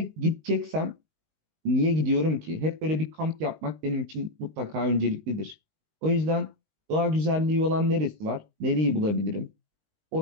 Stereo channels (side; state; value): left; late; 19 ms